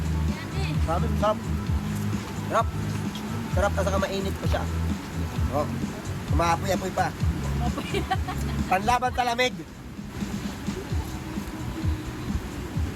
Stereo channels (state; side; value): identical; both; correlation 1.00